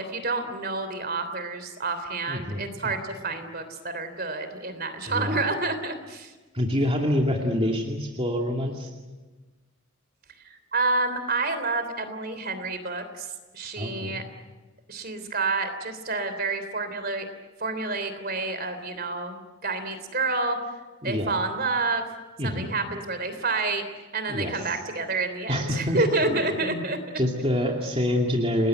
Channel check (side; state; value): both; normal; correlation 0.13